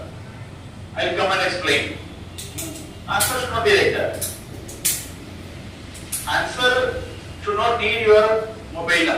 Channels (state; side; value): identical; both; correlation 1.00